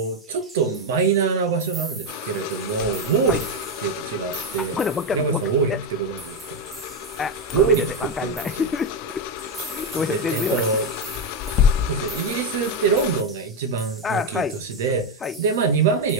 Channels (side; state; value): both; normal; correlation 0.07